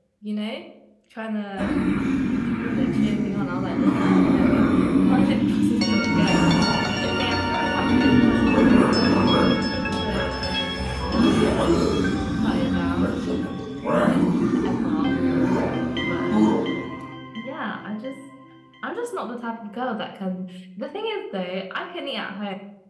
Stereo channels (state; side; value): identical; both; correlation 1.00